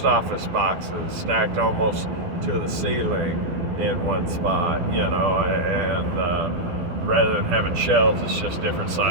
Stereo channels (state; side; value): late; left; 12 ms